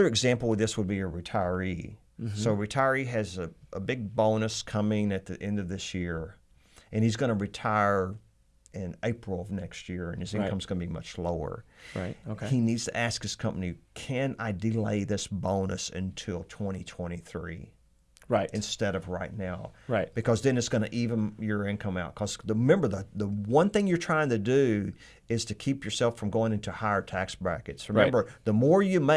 example of this would be a retiree. Mm-hmm. So a retiree has a big bonus coming at the end of this year, and he's going to retire in April of next year, and his income's going to be much lower. Right. Okay. He needs to ask his company, can I delay this bonus until 2023? Right. Instead of right now. Right. Because then it's going to even your income out. Because remember, the one thing you're trying to do is to keep yourself from going into higher tax brackets. Remember, the more you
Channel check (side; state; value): both; identical; correlation 1.00